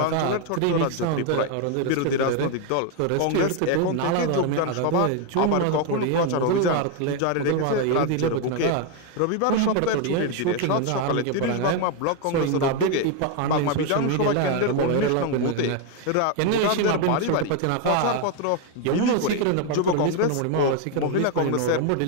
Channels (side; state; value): both; different; correlation 0.01